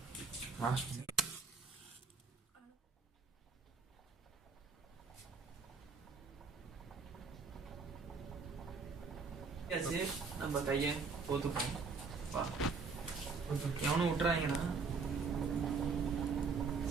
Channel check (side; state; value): left; quieter; 4.7 dB